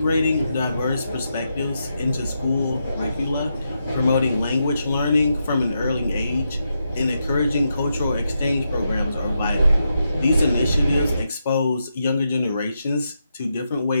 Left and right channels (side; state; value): both; inverted; correlation -0.84